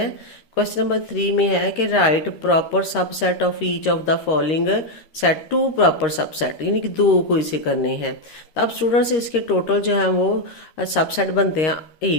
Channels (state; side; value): late; right; 13 ms